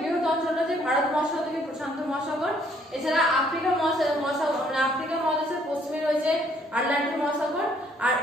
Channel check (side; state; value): both; normal; correlation 0.65